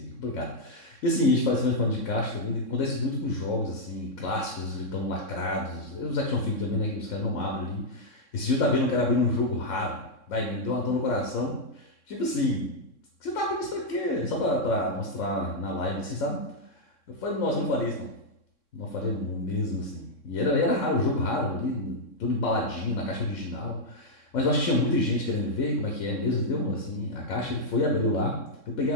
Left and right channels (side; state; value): right; late; 3.6 ms